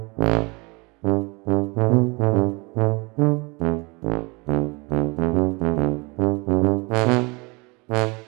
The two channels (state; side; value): quieter; left; 27.4 dB